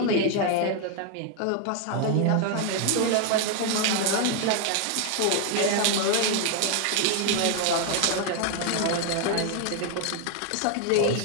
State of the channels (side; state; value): both; different; correlation 0.01